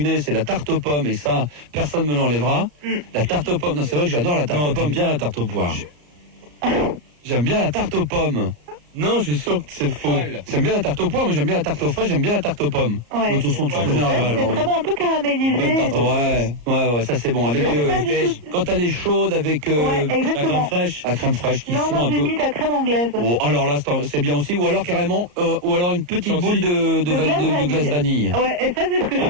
né. C'est la tarte aux pommes et ça, personne me l'enlèvera. La tarte aux pommes. Non, c'est vrai que j'adore la tarte aux Non, pommes. t'aimes bien la tarte aux poires. J'aime bien la tarte aux pommes. Non, je suis sûr que c'est faux. J'aime bien la tarte aux poires, mais j'aime bien la tarte aux fraises. J'aime bien la tarte aux pommes. Ouais. De toute façon, tu Ouais, connais. ouais, C'est très bon, un peu caramélisé. Bonne tarte aux Ouais, ça c'est bon. Avec Mais c'est pas du tout- quand elle est chaude avec Ouais, la exactement. crème fraîche, la crème fraîche qui Non, fond moi un j'ai peu. mis de la crème anglaise. Oh, alors là, c'est bien aussi. Ou alors carrément, ou alors une petite Chantilly. boule de glace vanille. Ouais, et ça c'est ce que je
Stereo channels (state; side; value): late; left; 34 ms